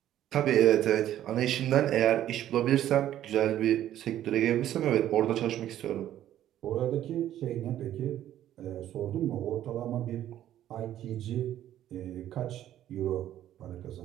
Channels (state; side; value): quieter; left; 12.0 dB